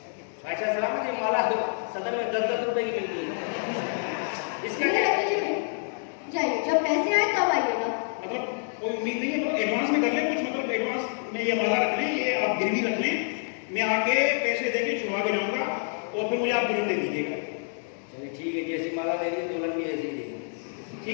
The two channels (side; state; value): right; silent; 57 dB below the other